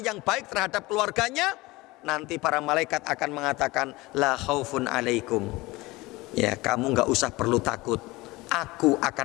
yang baik terhadap keluarganya, nanti para malaikat akan mengatakan la khaufun alaikum, ya, kamu nggak usah perlu takut. Aku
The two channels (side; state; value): right; quieter; 21.2 dB